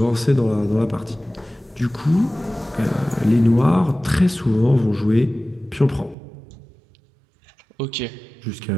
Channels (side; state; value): left; drops out; at 6.2 s